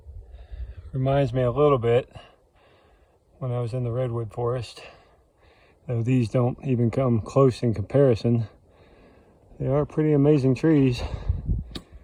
Reminds me a little bit when I was in the redwood forest. Though these don't even come close in comparison. They are pretty amazing trees.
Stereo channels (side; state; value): both; identical; correlation 1.00